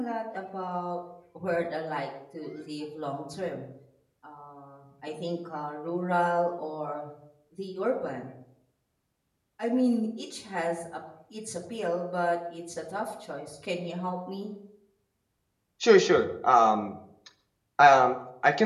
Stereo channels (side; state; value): both; identical; correlation 1.00